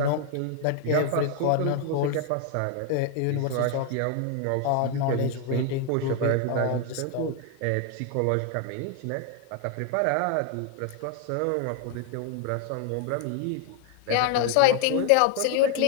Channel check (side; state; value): both; different; correlation 0.00